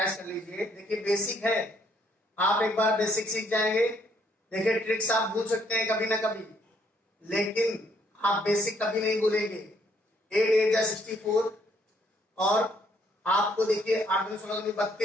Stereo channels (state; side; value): normal; both; correlation 0.68